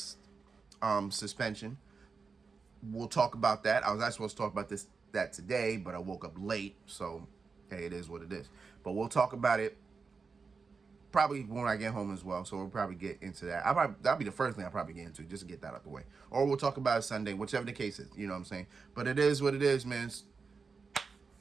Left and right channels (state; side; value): quieter; left; 4.9 dB